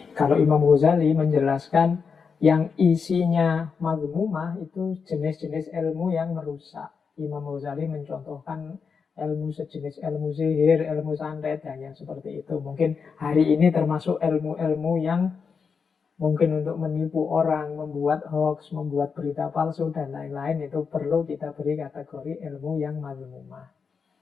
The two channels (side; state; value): right; quieter; 5.7 dB